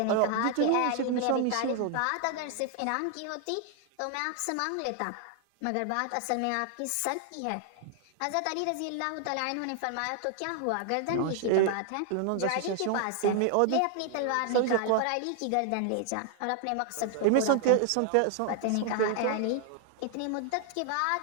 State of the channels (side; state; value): both; different; correlation 0.00